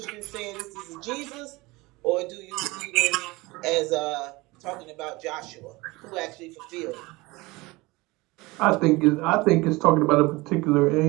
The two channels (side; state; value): left; quieter; 22.5 dB